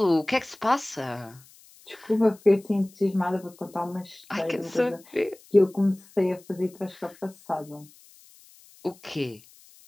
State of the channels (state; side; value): noise; left; hiss, 25 dB below the sound